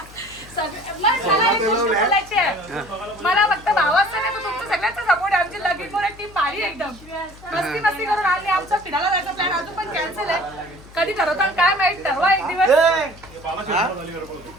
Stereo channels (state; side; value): noise; left; hum, 21 dB below the sound